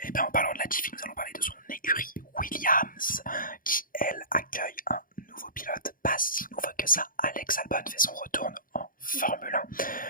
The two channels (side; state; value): right; late; 0.40 ms